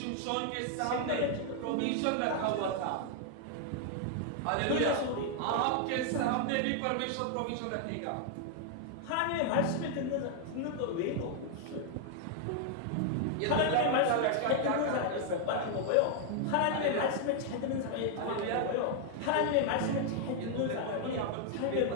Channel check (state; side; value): different; both; correlation 0.00